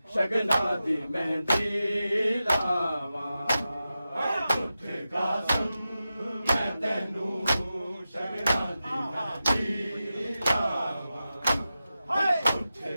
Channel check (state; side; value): inverted; both; correlation -0.92